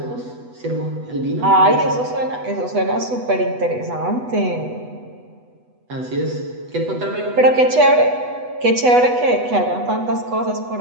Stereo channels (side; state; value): left; late; 8.1 ms